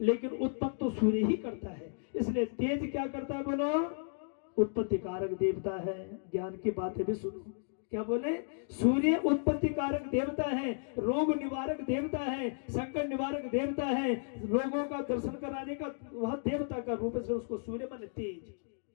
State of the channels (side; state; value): right; silent; digital silence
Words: लेकिन उत्पन्न तो सूर्य ही करता है। इसलिए तेज क्या करता है? बोलो, उत्पत्ति कारक देवता है। ज्ञान की बातें भी सुनो। क्या बोले? सूर्य उत्पत्ति कारक देवता है, रोग निवारक देवता है, संकट निवारक देवता है, लोगों का दर्शन कराने का वह देवता का रूप से उसको सूर्य माने तेज।